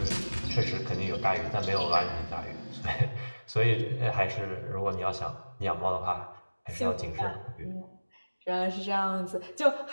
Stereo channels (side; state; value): both; inverted; correlation -1.00